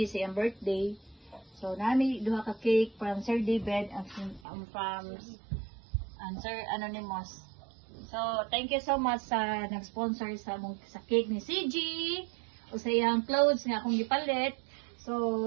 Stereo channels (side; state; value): left; drops out; at 4.4 s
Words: sa iyang birthday. So nami duha ka cake from Sir David and from Sir Anonymous. So, thank you so much sa nag-sponsor sa cake ni CG o sa iyang clothes nga akong gipalit.